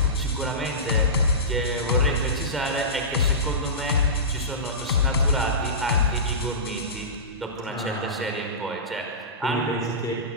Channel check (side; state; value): both; normal; correlation -0.19